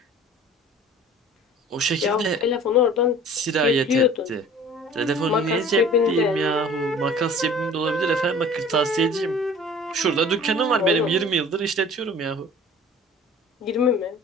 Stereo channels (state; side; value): normal; both; correlation 0.46